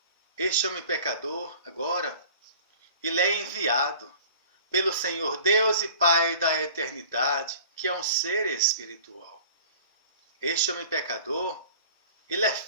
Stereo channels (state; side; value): inverted; both; correlation -0.45